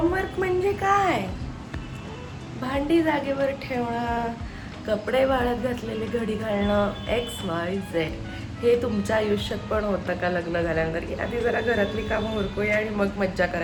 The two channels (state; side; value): identical; both; correlation 1.00